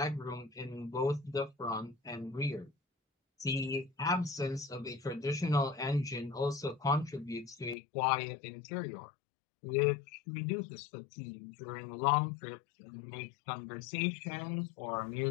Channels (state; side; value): drops out; right; at 7.8 s